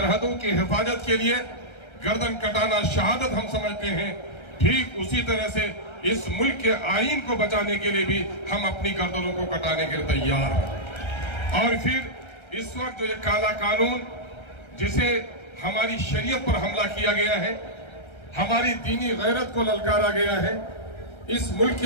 کی حفاظت کے لیے گردن کٹانا شہادت ہم سمجھتے ہیں، ٹھیک اسی طرح سے اس ملک کے آئین کو بچانے کے لیے بھی ہم اپنی گردنوں کو کٹانے کے لیے تیار ہیں۔ اور پھر اس وقت جو یہ کالا قانون جسے ہماری شریعت پر حملہ کیا گیا ہے، ہماری دینی غیرت کو للکارا گیا ہے، اس ملک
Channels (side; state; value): right; late; 1.3 ms